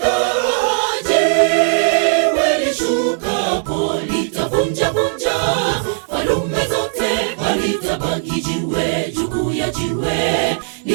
Jiwe lishukapo litavunja vunja falume zote, halitabaki jiwe juu ya jiwe.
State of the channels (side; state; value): left; silent; digital silence